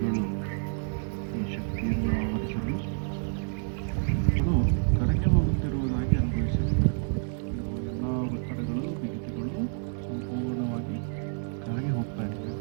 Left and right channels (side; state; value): left; silent; 59 dB below the other